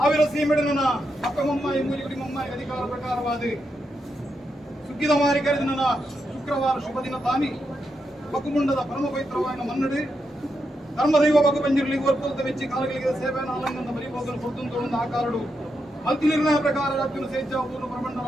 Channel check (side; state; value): both; normal; correlation 0.84